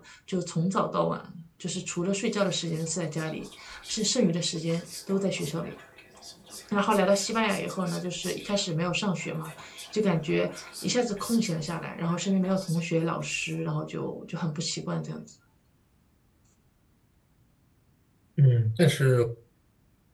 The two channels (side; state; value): both; identical; correlation 1.00